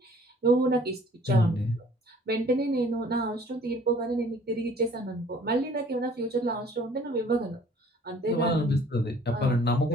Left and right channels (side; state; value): both; normal; correlation 0.54